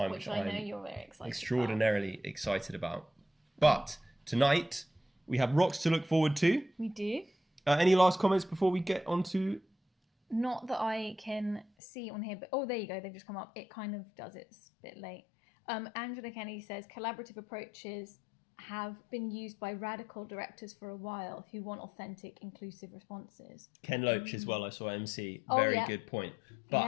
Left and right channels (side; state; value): right; drops out; at 11.7 s